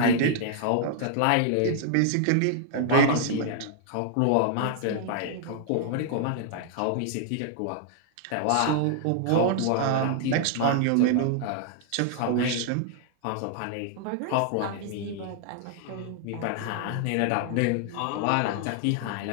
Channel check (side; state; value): both; different; correlation -0.01